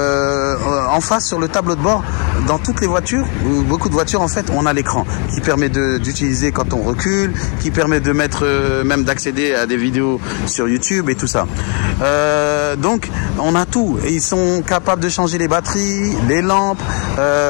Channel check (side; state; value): right; quieter; 37.8 dB